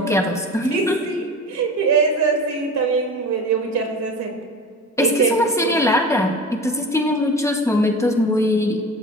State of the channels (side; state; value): both; normal; correlation 0.34